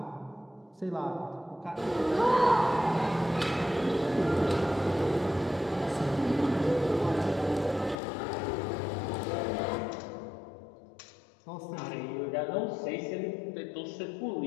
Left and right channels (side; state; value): right; drops out; at 8.0 s